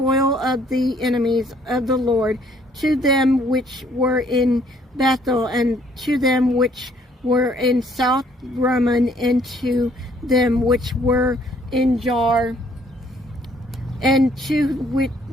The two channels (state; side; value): normal; both; correlation 0.63